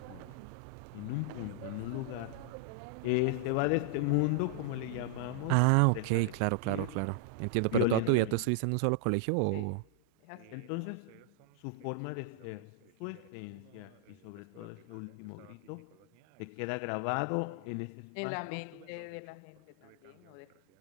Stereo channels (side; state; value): both; different; correlation -0.01